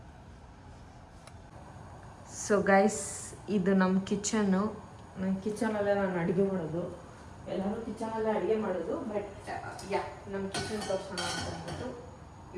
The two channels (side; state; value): both; identical; correlation 1.00